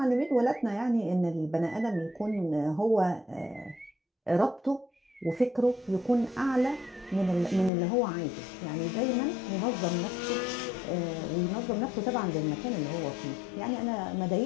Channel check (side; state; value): right; drops out; at 7.7 s